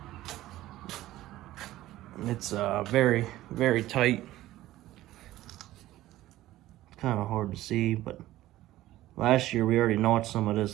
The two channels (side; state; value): left; quieter; 15.4 dB